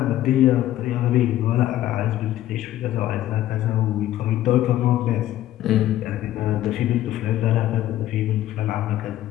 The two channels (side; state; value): right; quieter; 13.5 dB